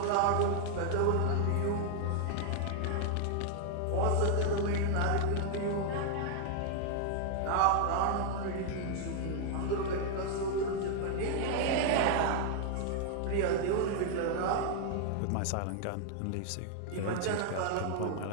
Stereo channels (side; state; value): both; different; correlation 0.00